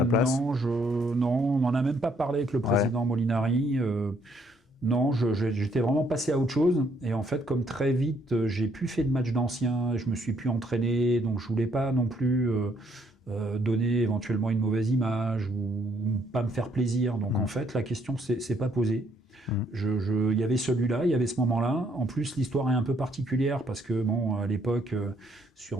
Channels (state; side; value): normal; both; correlation 0.68